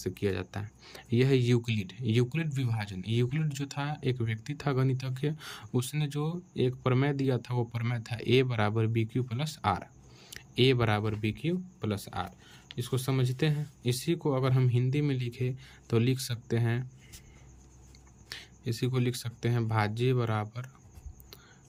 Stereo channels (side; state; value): both; identical; correlation 1.00